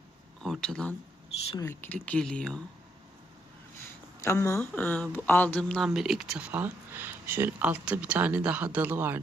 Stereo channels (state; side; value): normal; both; correlation 0.75